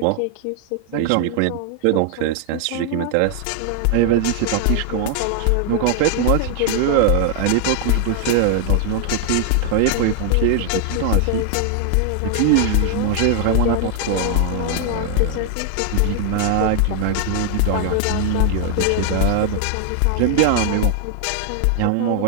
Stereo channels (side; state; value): both; different; correlation 0.00